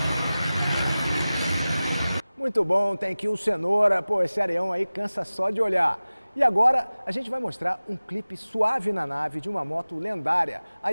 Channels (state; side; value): inverted; both; correlation -0.97